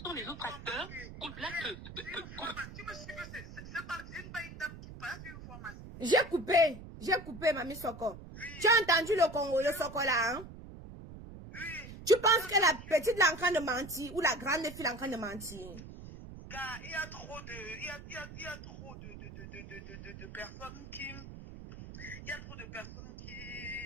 sans les autres acteurs, Cool Black... Tu me suis que c'est une dame qui parle, tu veux voir ma... J'ai coupé, Mamie Soko. Oui. Tu as entendu le Soko là, hein? Oui. Tu penses que la petite est en train de mentir ou la grande fille est en train de mentir? Car il y a trop de personnes qui... Il y a trop de personnes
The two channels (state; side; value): noise; right; rumble, 13 dB below the sound